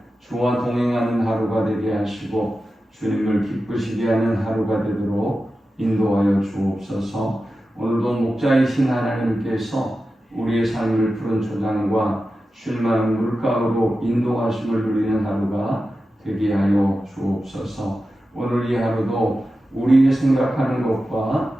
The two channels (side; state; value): both; normal; correlation 0.92